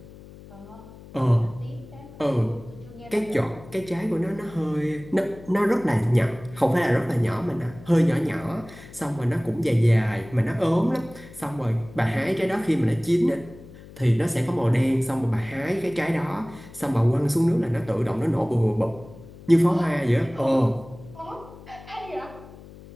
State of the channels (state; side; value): noise; left; hum, 19 dB below the sound